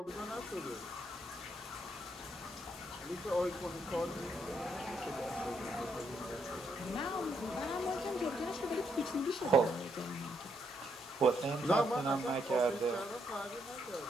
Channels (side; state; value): both; normal; correlation 0.76